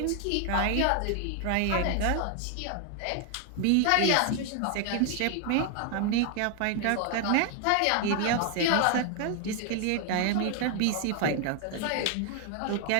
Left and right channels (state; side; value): different; both; correlation 0.00